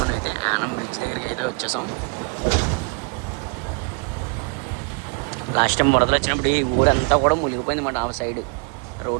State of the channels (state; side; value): quieter; left; 36.0 dB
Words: మనం అయితే యానం బ్రిడ్జ్ దగ్గరికి అయితే వచ్చేసాం. లాస్ట్ టైం వరదలు వచ్చినప్పుడు ఈ ఊరంతా కూడా మునిగిపోయింది అన్నమాట. ఆ సైడ్